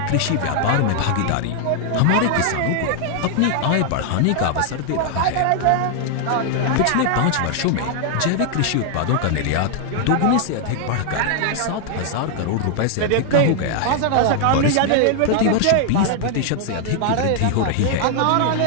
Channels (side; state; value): both; different; correlation 0.00